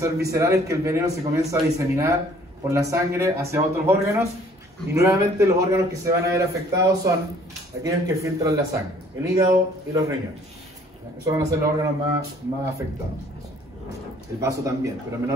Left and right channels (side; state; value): both; normal; correlation 0.57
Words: visceral, es que el veneno se comienza a diseminar por la sangre hacia otros órganos, y nuevamente los órganos que se van a ver afectados son aquellos que filtran la sangre, el hígado y los riñones. Esos van a ser los órganos más afectados. El vaso también, pero en